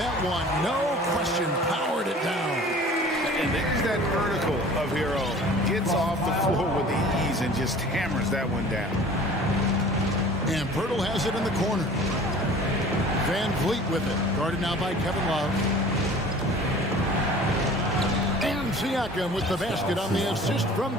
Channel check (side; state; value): both; normal; correlation 0.46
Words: one, no question, powered it down. And there's that vertical of Hero. Gets off the floor with ease and just hammers that one down. And Purtle has it in the corner. Van Vliet with it. Guarded now by Kevin Love. And Siakam with the basket on the assist from